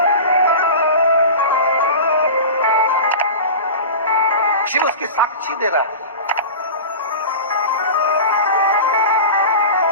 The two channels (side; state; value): both; inverted; correlation -0.31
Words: शिव उसकी साक्षी दे रहा है।